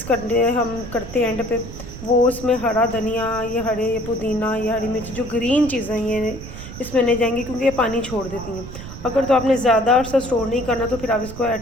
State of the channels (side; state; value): right; noise; rumble, 12 dB below the sound